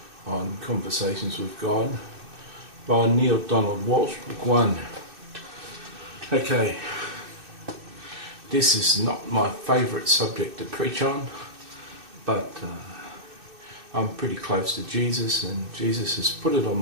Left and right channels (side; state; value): left; late; 2.6 ms